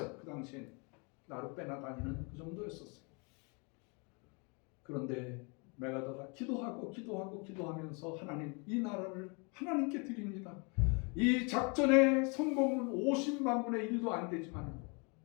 그 당시에는 나루 빼나 다니는 그 정도였었어요. 그런데 메가더가 기도하면서 하나님, 이 나라를 하나님께 드립니다. 이 작전의 성공은 50만 분의 1도 안 되지만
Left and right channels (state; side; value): quieter; right; 33.1 dB